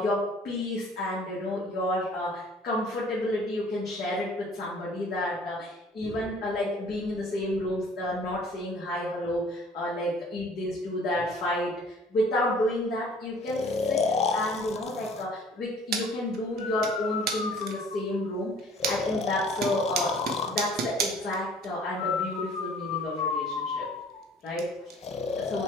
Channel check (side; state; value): both; normal; correlation 0.52